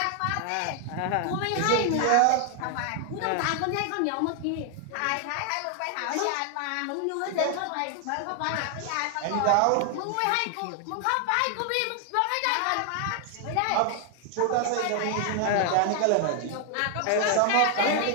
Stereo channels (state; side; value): different; both; correlation 0.00